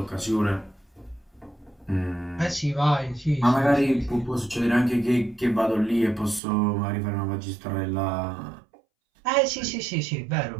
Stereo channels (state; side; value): drops out; left; at 6.4 s